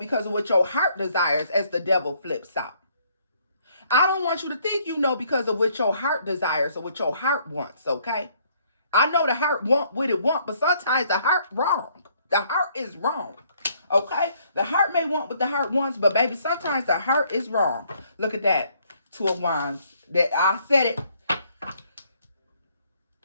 of what your heart desires, as the devil flips out. I don't want you to think you know because of what your heart desires or what your heart wants, okay? I know the heart want what it want, but sometimes the heart wrong. The heart is wrong, okay? The heart may want what the heart wants, but baby, sometimes the heart is wrong. Look at that. Two of Wands. That I said it.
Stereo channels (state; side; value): inverted; both; correlation -0.66